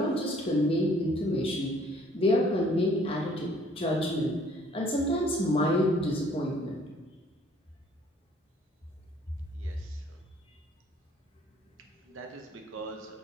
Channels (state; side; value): normal; both; correlation 0.59